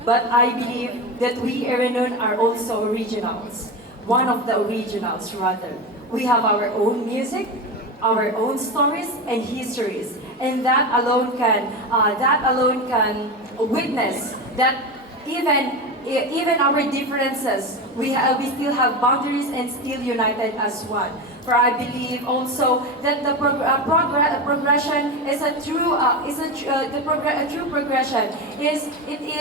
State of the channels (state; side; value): normal; both; correlation 0.21